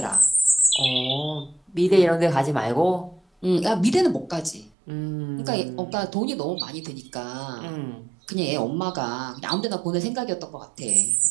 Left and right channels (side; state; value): left; drops out; at 4.7 s